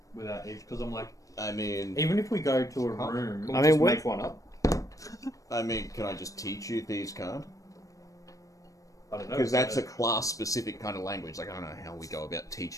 without edge. Because I'm like, I mean, even if we go to a room, Can we I mean, just we're- make one up? can I just teach you thieves' card? I don't know. Because that's a class-specific kind of language. Like, I don't know how we go about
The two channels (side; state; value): right; late; 0.16 ms